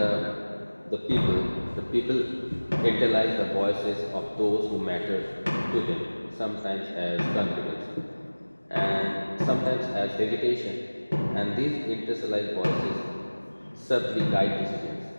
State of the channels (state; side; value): inverted; both; correlation -1.00